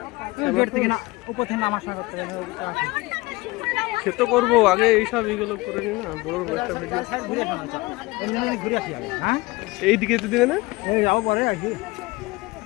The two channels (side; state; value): right; quieter; 22.2 dB